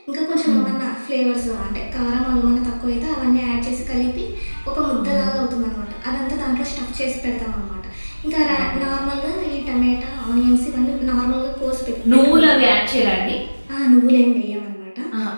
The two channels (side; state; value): both; inverted; correlation -1.00